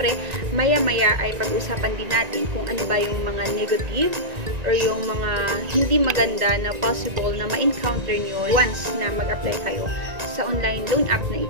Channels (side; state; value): left; late; 1.9 ms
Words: maya-maya ay pag-usapan din natin kung ano ba yung mga negative or yung mga hindi maganda na possible na ma-encounter nyo once na mag-apply kayo sa online loan app na